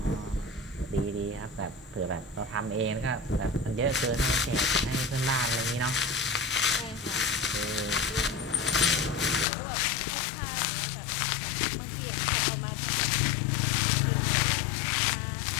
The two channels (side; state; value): right; drops out; at 9.5 s